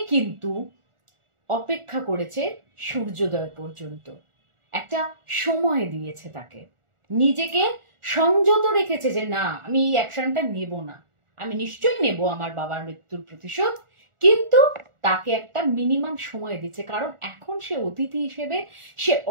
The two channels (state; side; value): late; left; 1.4 ms